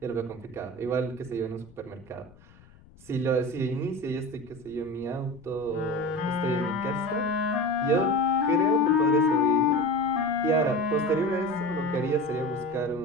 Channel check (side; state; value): left; noise; rumble, 25 dB below the sound